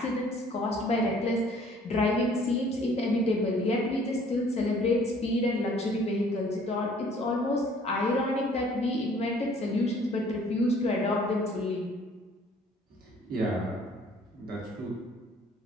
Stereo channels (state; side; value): normal; both; correlation 0.56